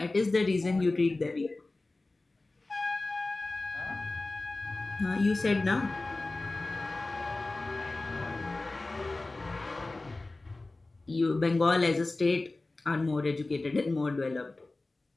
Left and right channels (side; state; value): right; quieter; 3.1 dB